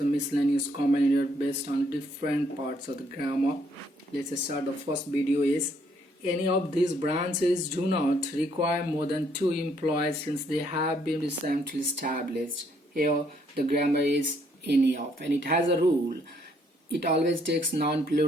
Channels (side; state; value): both; normal; correlation 0.69